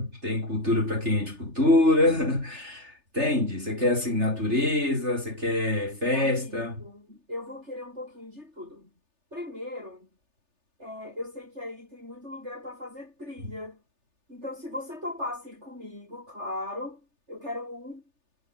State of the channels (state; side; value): late; left; 3.3 ms